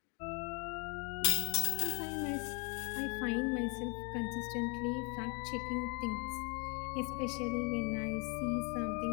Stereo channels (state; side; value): quieter; right; 33.9 dB